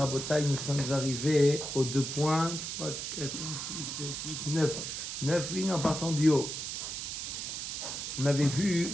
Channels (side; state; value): right; noise; hiss, 5 dB below the sound